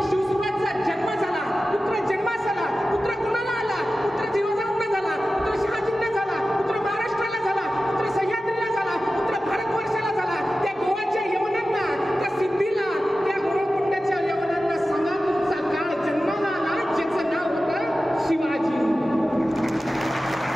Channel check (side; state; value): both; normal; correlation 0.94